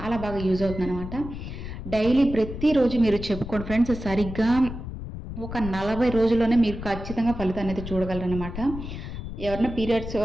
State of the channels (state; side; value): noise; left; rumble, 9 dB below the sound